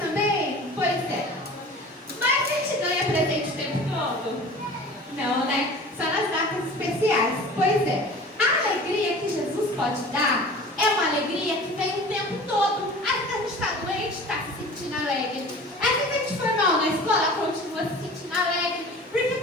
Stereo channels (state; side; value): normal; both; correlation 0.41